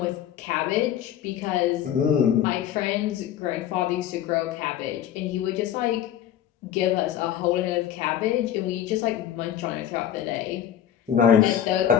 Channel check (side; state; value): right; quieter; 10.3 dB